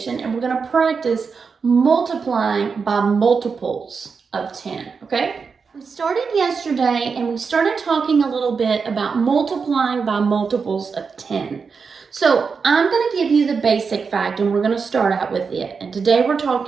and we're going to practice multiplying by multiples of 10, okay? We started yesterday and we started talking a little bit about multiplying by multiples of 10. So I'm going to give you the basic fact and we're going to start out with it. And today we're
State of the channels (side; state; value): left; quieter; 5.4 dB